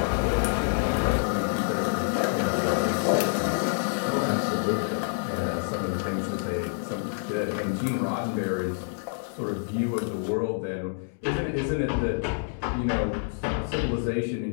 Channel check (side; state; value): right; silent; digital silence